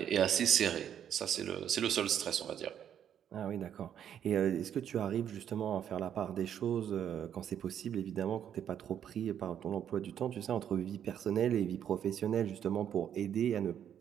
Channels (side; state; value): left; quieter; 9.4 dB